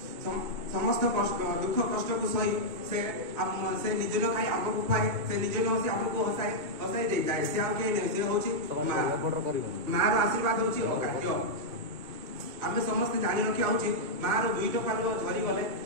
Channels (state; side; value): late; left; 2.2 ms